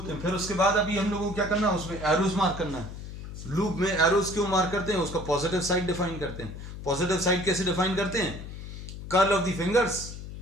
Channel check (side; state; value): left; noise; hum, 10 dB below the sound